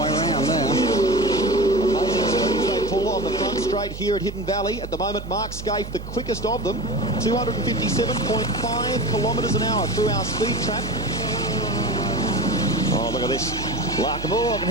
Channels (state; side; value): noise; right; hum, 10 dB below the sound